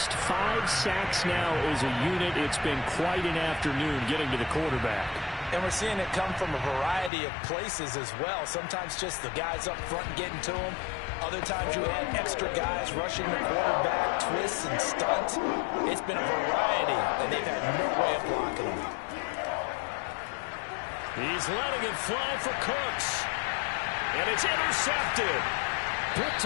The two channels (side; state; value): right; drops out; at 7.1 s